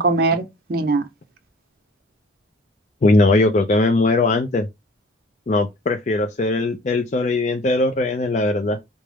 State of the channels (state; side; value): normal; both; correlation 0.47